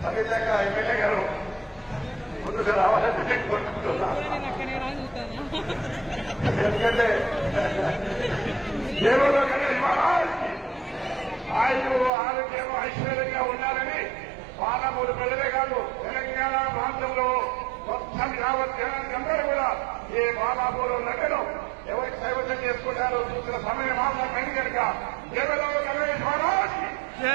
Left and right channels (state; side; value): drops out; left; at 12.1 s